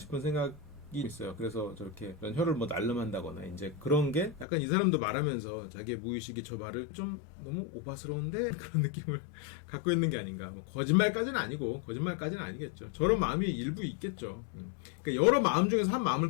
생각이 있어요. 그래서 저렇게 혀를 뭐 날름한다거나 이제 그런 게 약간 이 사람도 말하면서 자기의 무의식이 저 말을 좀 너무 오바스러운데 그런 느낌을 갖고 있는 게 아닌가. 뭐 거짓말까지는 아니겠죠. 저런 마음이 일부 있겠죠. 그러니까 여러 마음 중에서 한 마음을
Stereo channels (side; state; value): right; drops out; at 4.5 s